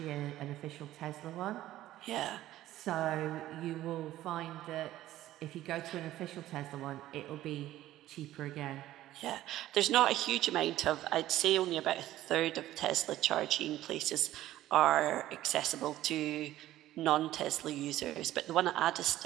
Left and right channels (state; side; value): quieter; left; 14.4 dB